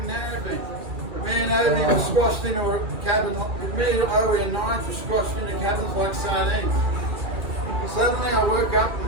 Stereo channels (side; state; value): left; late; 2.3 ms